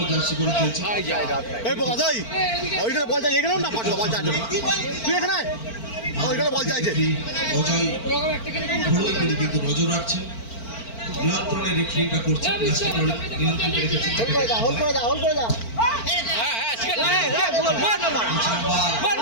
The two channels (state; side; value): late; right; 4.4 ms